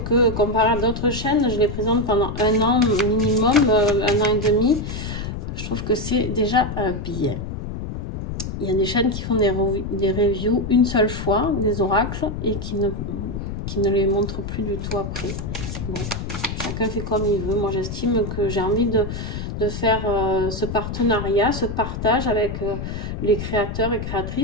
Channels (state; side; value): noise; left; rumble, 6 dB below the sound